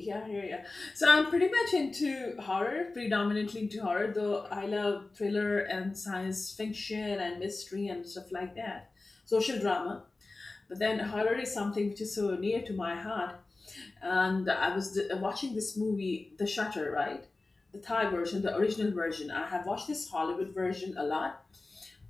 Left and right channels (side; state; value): right; quieter; 3.3 dB